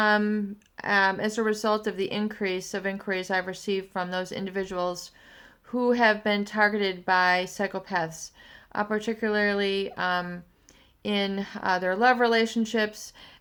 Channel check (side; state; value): both; identical; correlation 1.00